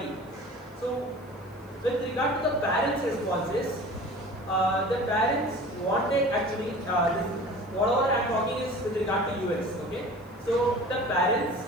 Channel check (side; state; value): left; noise; hiss, 30 dB below the sound